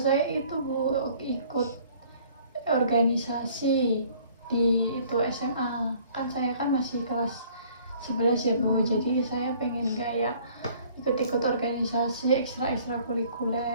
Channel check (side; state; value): both; inverted; correlation -0.56